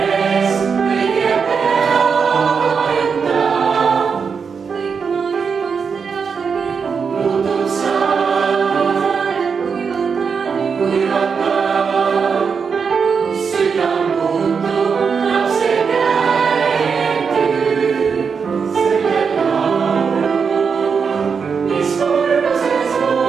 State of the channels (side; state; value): left; quieter; 5.9 dB